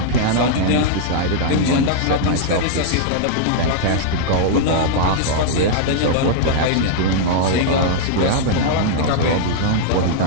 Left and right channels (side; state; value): both; different; correlation -0.01